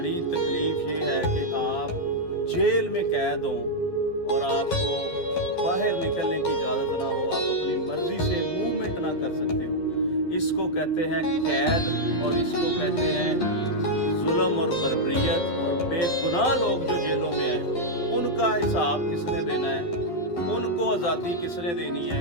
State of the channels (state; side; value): late; right; 12 ms